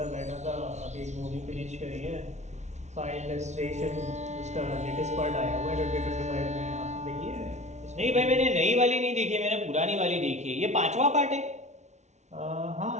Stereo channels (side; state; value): left; late; 0.33 ms